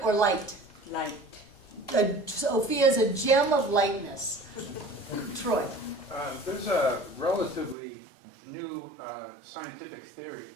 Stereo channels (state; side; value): drops out; left; at 7.8 s